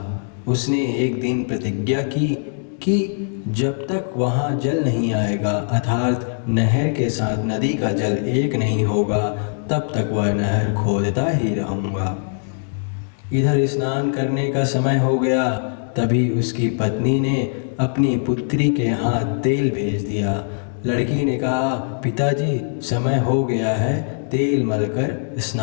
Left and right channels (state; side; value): silent; right; digital silence